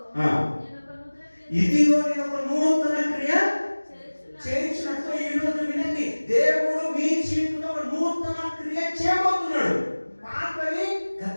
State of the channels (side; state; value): both; inverted; correlation -1.00